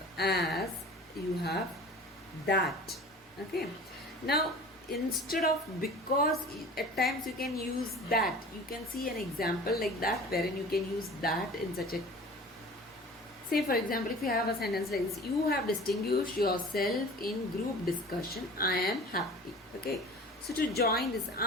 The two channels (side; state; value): both; normal; correlation 0.42